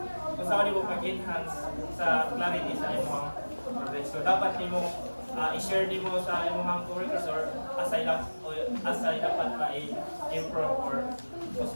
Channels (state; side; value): inverted; both; correlation -1.00